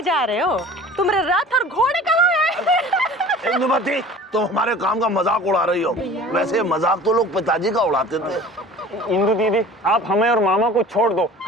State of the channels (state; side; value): normal; both; correlation 0.43